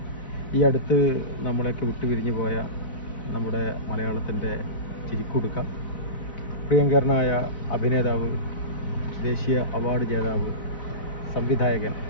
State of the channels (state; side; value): late; right; 3.8 ms